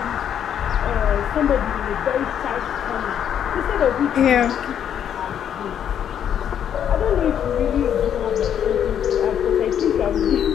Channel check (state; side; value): quieter; right; 9.2 dB